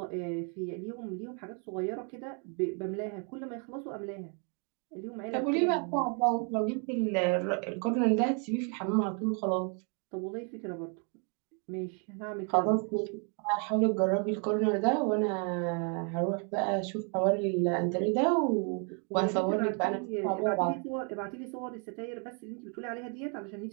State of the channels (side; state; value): left; quieter; 39.0 dB